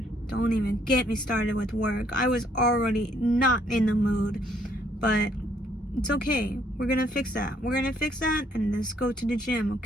don't even get me started with work. I was already not in the mood, but it's okay. We're gonna fix that. We're gonna fix that and let's go to the gym,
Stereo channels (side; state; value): both; normal; correlation 0.67